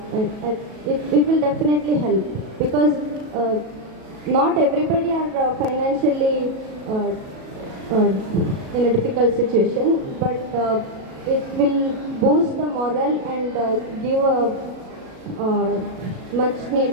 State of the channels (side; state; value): left; late; 37 ms